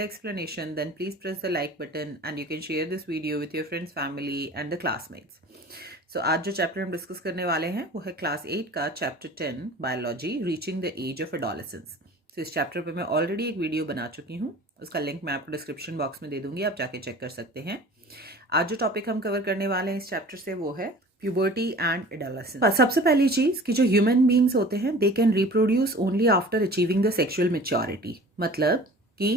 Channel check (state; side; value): normal; both; correlation 0.43